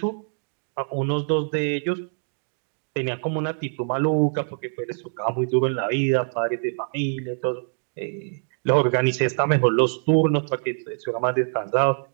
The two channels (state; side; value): silent; left; digital silence